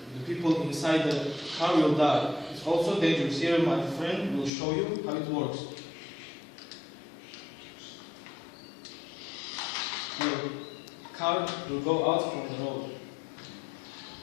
people inside the car will die. It's also dangerous. Here my friend will show you how it works. Car will go out from the road.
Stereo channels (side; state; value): right; drops out; at 4.5 s